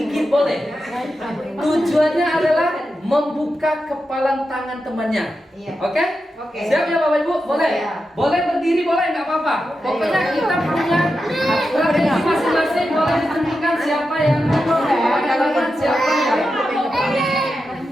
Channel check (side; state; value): both; normal; correlation 0.89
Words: boleh. Tujuannya adalah membuka kepalan tangan temannya. Oke? Siap ya Bapak Ibu? Boleh? Boleh berdiri, boleh, nggak apa-apa. Pokoknya kita punya strategi masing-masing, boleh ditentukan siapa yang melakukan, siapa yang